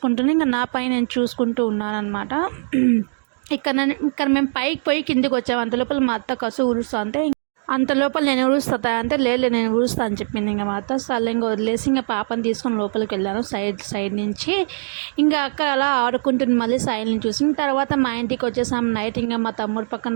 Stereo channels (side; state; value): left; silent; digital silence